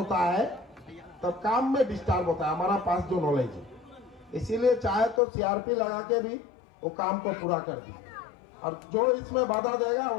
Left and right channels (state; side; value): drops out; right; at 5.2 s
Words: है तब काम में डिस्टर्ब होता है, हमारा पास जो नॉलेज है। इसीलिए चाहे तो सीआरपी लगा के भी वो काम को पूरा कर दी, और जो इसमें बाधा देगा